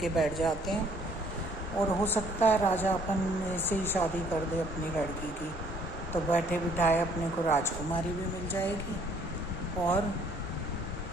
बैठ जाते हैं और हो सकता है राजा अपन से ही शादी कर दे अपनी लड़की की, तो बैठे बिठाए अपने को राजकुमारी भी मिल जाएगी और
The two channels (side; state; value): both; normal; correlation 0.62